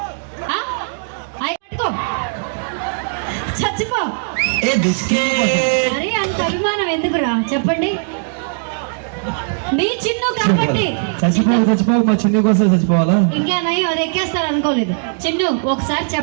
పట్టుకో చచ్చిపో. అరే అంత అభిమానం ఎందుకురా చెప్పండి? నీ చిన్ను కాబట్టి చచ్చిపోవు మా చిన్ను కోసం చచ్చిపోవాలా? ఇంకేనయ్యో అది ఎక్కేస్తారు అనుకోలేదు. చిన్ను ఒకసారి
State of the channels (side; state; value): left; silent; digital silence